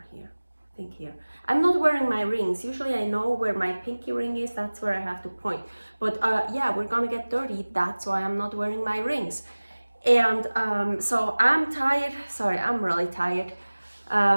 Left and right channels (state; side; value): inverted; both; correlation -1.00